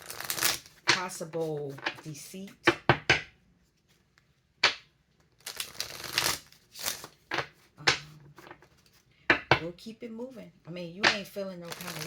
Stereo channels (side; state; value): both; identical; correlation 1.00